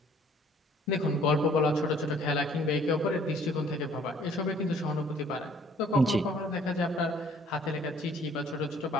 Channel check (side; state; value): both; normal; correlation 0.58